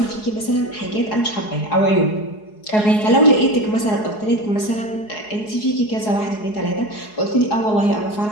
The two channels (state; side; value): late; right; 4.7 ms